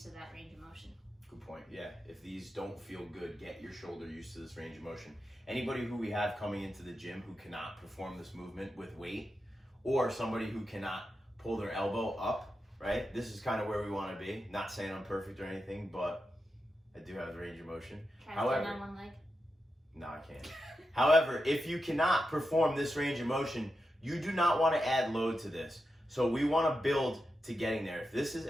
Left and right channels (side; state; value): both; normal; correlation 0.89